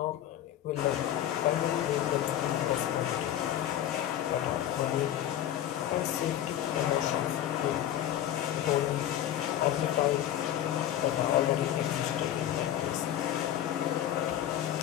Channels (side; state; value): right; quieter; 11.7 dB